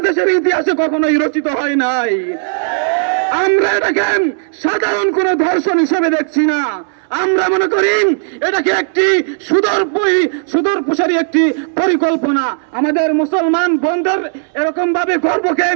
ইতিহাসে কখনোই রচিত হয় নাই। আমরা এটাকে সাধারণ কোনো ধর্ষণ হিসেবে দেখছি না, আমরা মনে করি এটাকে একটি সুদূরপ্রসারী একটি পরিকল্পনা। আমাদের মুসলমান বন্ধুর এরকম ভাবে গর্বকে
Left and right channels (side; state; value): left; silent; digital silence